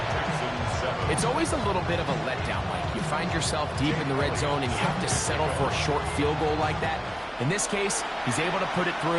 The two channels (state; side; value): identical; both; correlation 1.00